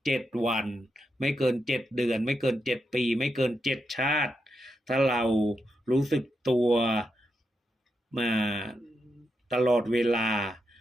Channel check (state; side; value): normal; both; correlation 0.85